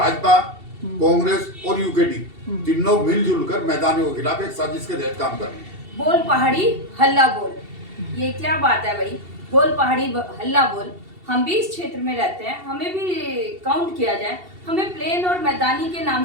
कांग्रेस और यूकेडी, तीनों मिलजुल कर मैदानियों के खिलाफ एक साजिश के तहत काम कर रहे हैं। बोल पहाड़ी हल्ला बोल, ये क्या बात है भाई? बोल पहाड़ी हल्ला बोल। हम भी इस क्षेत्र में रहते हैं, हमें भी काउंट किया जाए, हमें प्लेन और मैदानी के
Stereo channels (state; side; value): late; left; 2.7 ms